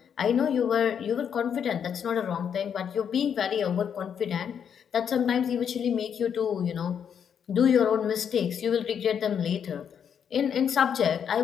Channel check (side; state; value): right; quieter; 7.9 dB